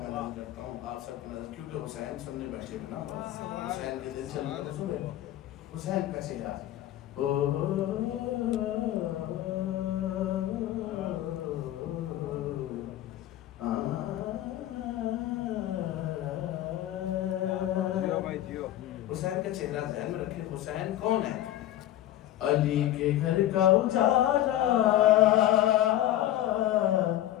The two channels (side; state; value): right; quieter; 13.3 dB